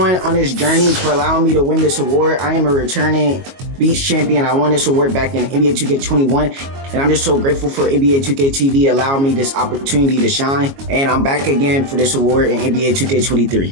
on this journey for allowing me to win this award. I am a returning Beats champion. I won this award back in NBA 2K21, and I'm just so grateful for NBA 2K TV allowing me this opportunity to shine. And I'm back again for this award in NBA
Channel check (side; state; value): left; late; 22 ms